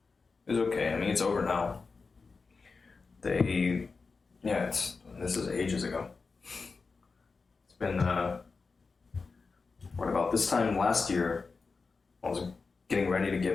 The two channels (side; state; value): right; quieter; 4.5 dB